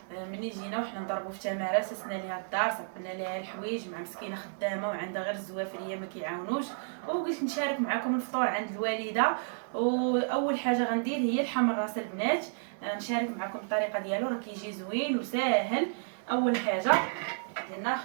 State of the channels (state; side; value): silent; left; digital silence